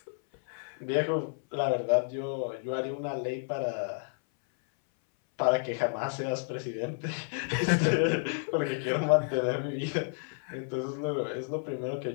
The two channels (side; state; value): right; silent; 57 dB below the other